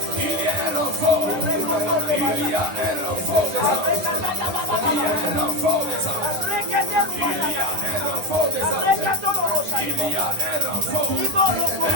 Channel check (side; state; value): left; late; 10 ms